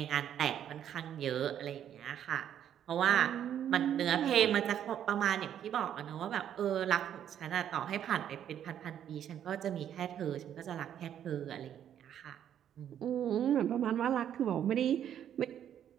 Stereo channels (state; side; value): quieter; left; 9.9 dB